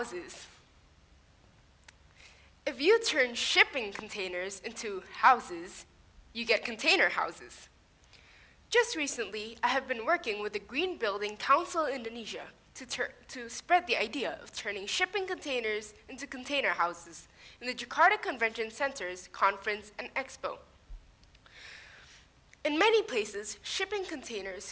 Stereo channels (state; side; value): identical; both; correlation 1.00